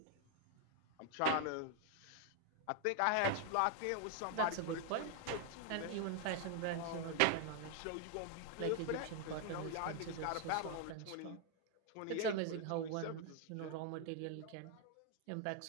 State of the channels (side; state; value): both; different; correlation 0.00